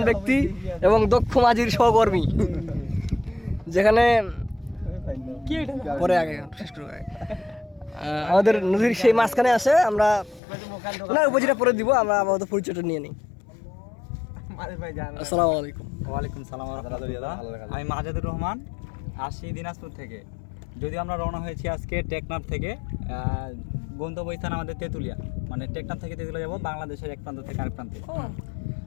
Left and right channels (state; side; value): drops out; right; at 10.4 s